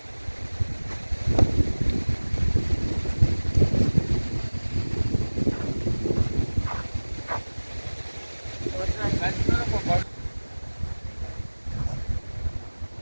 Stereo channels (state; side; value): inverted; both; correlation -1.00